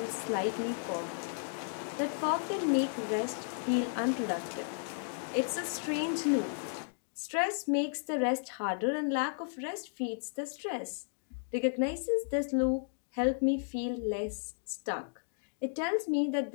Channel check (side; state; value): right; silent; digital silence